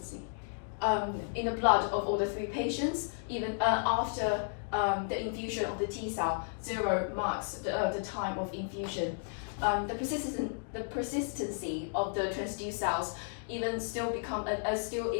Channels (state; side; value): silent; right; digital silence